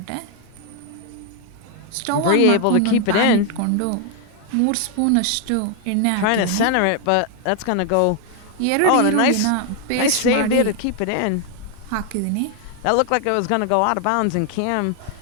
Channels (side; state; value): both; different; correlation 0.00